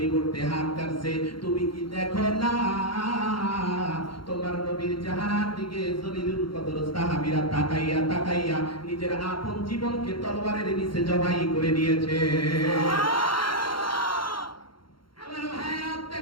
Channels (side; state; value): right; late; 0.73 ms